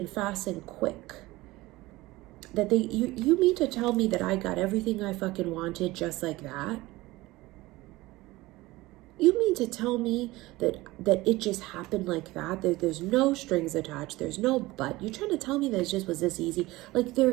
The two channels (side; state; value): left; quieter; 19.5 dB